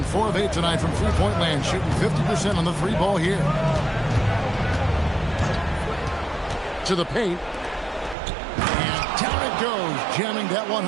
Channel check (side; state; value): left; drops out; at 8.2 s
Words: 4 of 8 tonight from three-point land, shooting 50% on the three ball here. To the paint. And down it goes, jamming that one